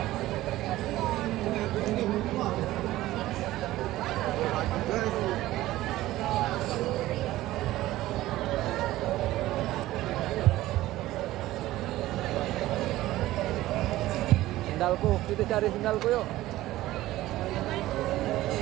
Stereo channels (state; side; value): quieter; left; 16.1 dB